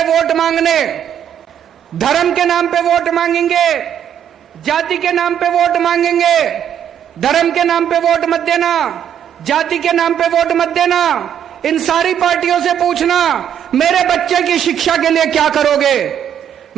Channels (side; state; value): left; quieter; 9.3 dB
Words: वोट मांगने, धर्म के नाम पे वोट मांगेंगे, जाति के नाम पे वोट मांगेंगे। धर्म के नाम पे वोट मत देना, जाति के नाम पे वोट मत देना। इन सारी पार्टियों से पूछना मेरे बच्चे की शिक्षा के लिए क्या करोगे,